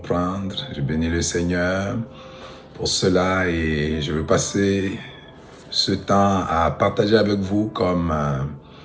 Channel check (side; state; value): both; identical; correlation 1.00